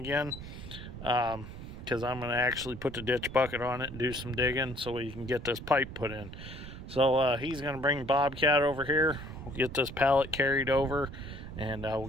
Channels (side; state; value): right; noise; rumble, 12 dB below the sound